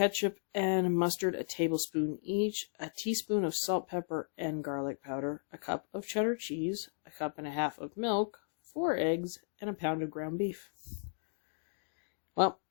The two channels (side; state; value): right; silent; digital silence